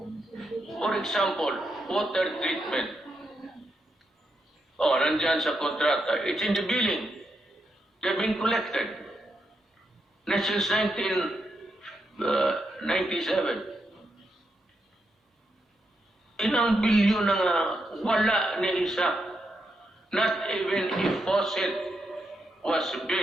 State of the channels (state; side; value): normal; both; correlation 0.82